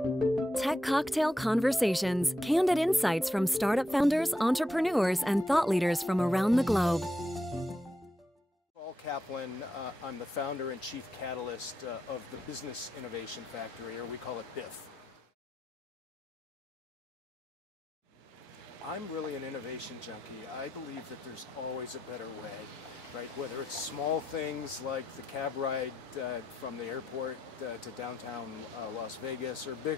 Cocktail Conversations, candid insights from startup founders, entrepreneurs, and thought leaders from around the globe. Saul Kaplan, I'm the founder and chief catalyst of the Business Innovation Factory, or we call it BIF. I'm really an innovation junkie. I believe that there's always a better way, right? Whether it's small things like the cab ride from the airport to downtown Las Vegas, or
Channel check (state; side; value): normal; both; correlation 0.84